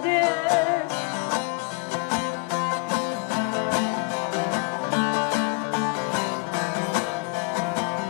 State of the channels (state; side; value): quieter; right; 31.6 dB